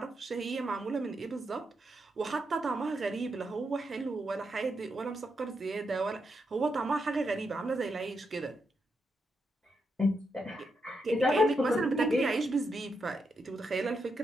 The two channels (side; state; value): both; normal; correlation 0.83